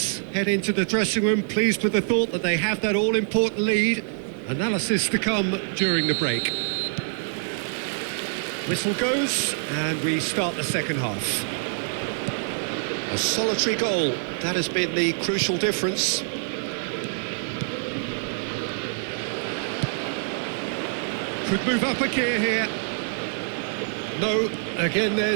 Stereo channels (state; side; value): silent; left; 61 dB below the other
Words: head into the dressing room pleased with the thought that they have that all-important lead. Analysis to come during the break. Whistle goes, and we start the second half. A solitary goal, that has been the crucial difference. Could move up a gear here. No, again